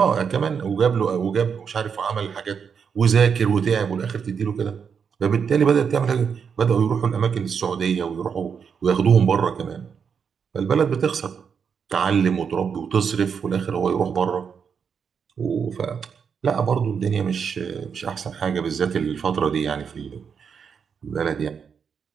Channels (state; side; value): quieter; left; 6.7 dB